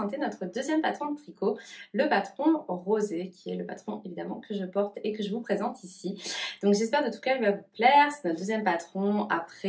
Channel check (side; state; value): both; identical; correlation 1.00